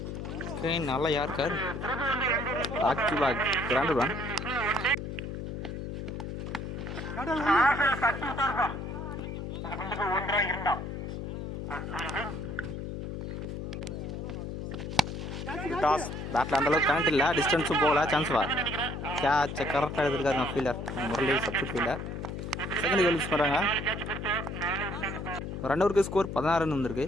நல்லா யாருக்கார் back to back granted one. டாஸ் பேட்டில் அந்தளவுக்கு கரண்ட் இல்லை, டிஸ்டன்ஸும் போகல, சான்ஸ் வா. கேட்சை கரெக்டாக எடுத்துருக்காருங்க fielder Murali, substitute fielder. Second wicket loose பண்ணுறாங்க. 2 ஓவருக்கு ஸ்கோர் 16 ரன் வந்திருக்கு.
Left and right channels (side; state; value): left; noise; hum, 6 dB below the sound